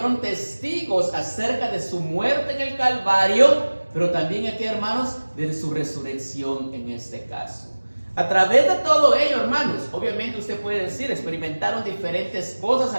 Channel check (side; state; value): both; inverted; correlation -1.00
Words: testigos acerca de su muerte en el Calvario, pero también aquí, hermanos, de su resurrección en este caso. A través de todo ello, hermanos, obviamente usted puede decir, experimentaron diferentes cosas